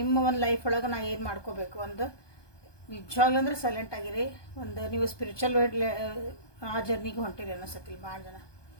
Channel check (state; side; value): late; right; 1.2 ms